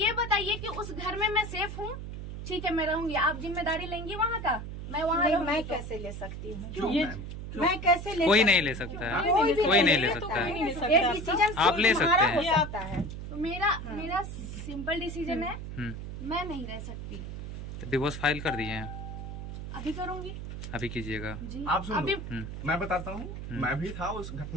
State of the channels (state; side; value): noise; right; hum, 8 dB below the sound